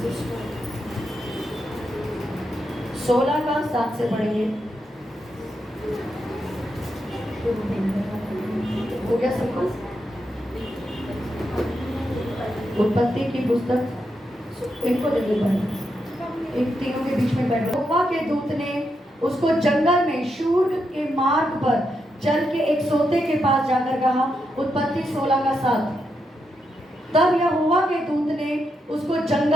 16 का 7 से पढ़ेंगे। हो गया सब कुछ? उत्पत्ति की पुस्तक इनको दे दो बाइबल, एक तीनों के बीच में बैठ। यहोवा के दूत ने उसको जंगल में शूर के मार्ग पर चल के एक सोते के पास जाकर कहा। उत्पत्ति 16 का 7। तब यहोवा के दूत ने उसको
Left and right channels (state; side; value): normal; both; correlation 0.83